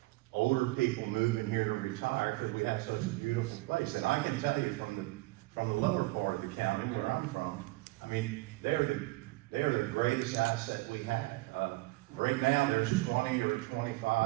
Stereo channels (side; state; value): left; quieter; 21.5 dB